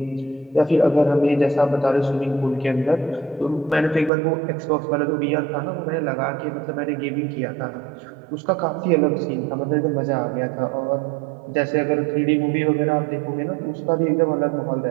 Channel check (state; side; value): drops out; left; at 4.1 s